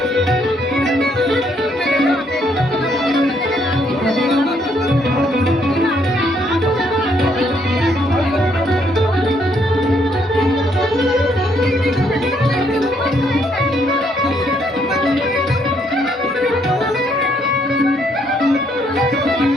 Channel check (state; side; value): normal; both; correlation 0.70